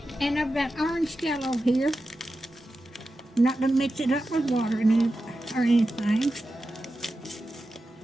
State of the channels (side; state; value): both; normal; correlation 0.92